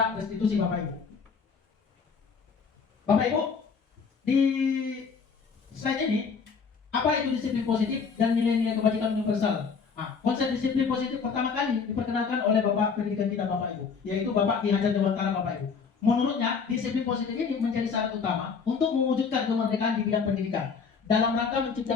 restitusi Bapak Ibu. Bapak Ibu, di slide ini, apa itu disiplin positif dan nilai-nilai kebajikan universal? Nah, konsep disiplin positif pertama kali diperkenalkan oleh Bapak pendidikan kita Bapak Ibu, yaitu Bapak Ki Hajar Dewantara Bapak Ibu. Menurutnya, disiplin positif ini menjadi syarat utama untuk mewujudkan kemerdekaan di bidang pendidikan. Dalam rangka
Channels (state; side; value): quieter; right; 5.6 dB